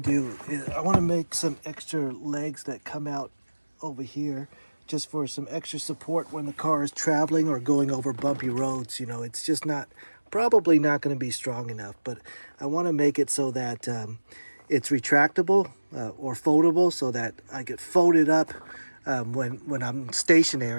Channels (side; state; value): both; inverted; correlation -1.00